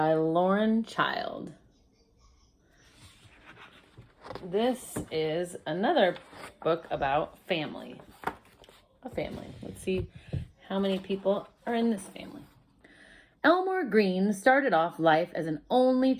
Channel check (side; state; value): both; identical; correlation 1.00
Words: Lauren Child. This is another book about family. A family. Let's see how many people are in this family. Elmore Green started off life as an only